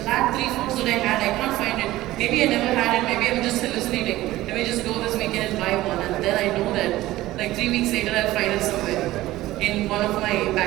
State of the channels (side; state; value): left; quieter; 16.5 dB